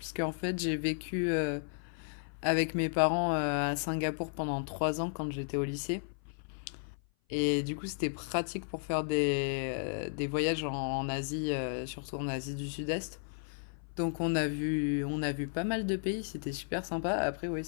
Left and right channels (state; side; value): silent; right; 55 dB below the other